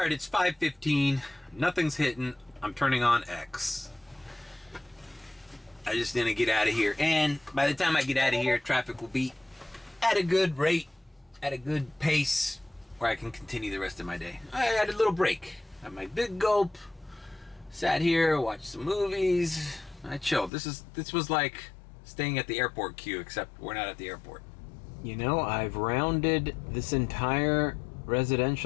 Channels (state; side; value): drops out; right; at 20.5 s